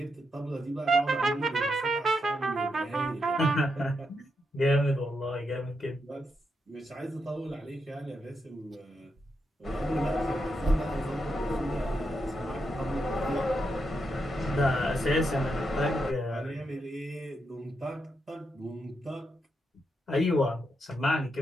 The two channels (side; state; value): both; normal; correlation 0.83